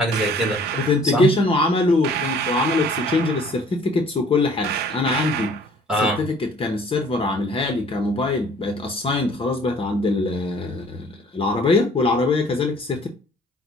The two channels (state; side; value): normal; both; correlation 0.54